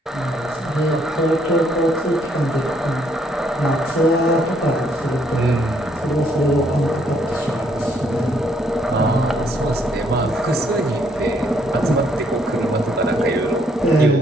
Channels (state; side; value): normal; both; correlation 0.69